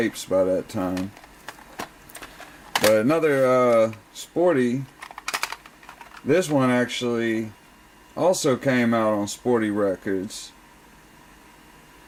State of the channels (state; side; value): identical; both; correlation 1.00